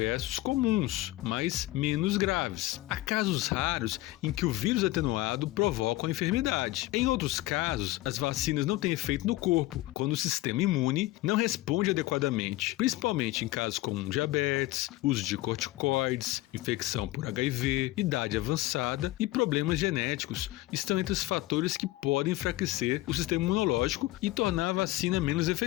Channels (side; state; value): right; quieter; 17.8 dB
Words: comuns, mas menos graves. Há casos raros em que o vírus atenuado provoca a enfermidade. Em outros casos, as vacinas não têm efeito no corpo, quando o sistema imune não responde adequadamente, principalmente em casos como diabetes, uso de corticoides, infecção por HIV, idade avançada e problemas genéticos estão entre os fatores que podem enfraquecer o sistema imunológico e tornar a vacina menos